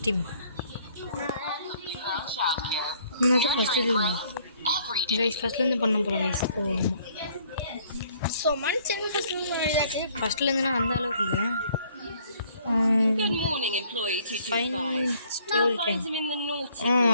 team. ஃபஸ்ட்லேருந்து பண்ண போகிறோம் கைஸ். ஃபஸ்ட்லேருந்து நான் அந்த அளவுக்கு இல்லை.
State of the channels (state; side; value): inverted; both; correlation -0.62